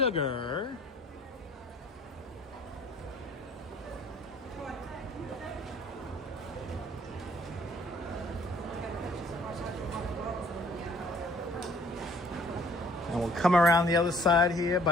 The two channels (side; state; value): both; normal; correlation 0.57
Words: And we'll come around the other side here